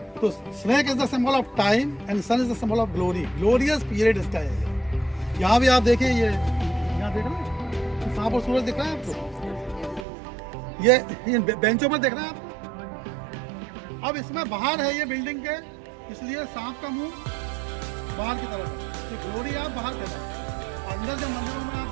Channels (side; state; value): left; drops out; at 10.1 s